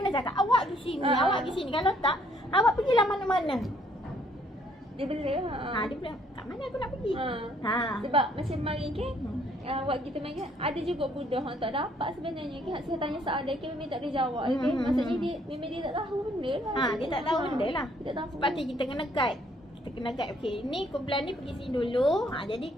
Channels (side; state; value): both; normal; correlation 0.65